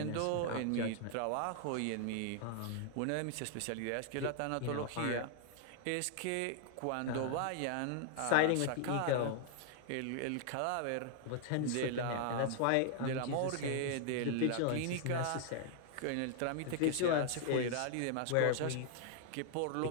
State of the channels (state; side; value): different; both; correlation 0.00